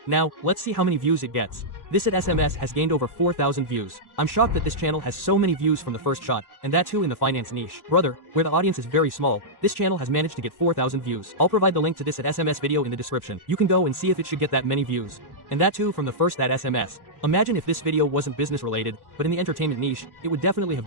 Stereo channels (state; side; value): late; right; 1.1 ms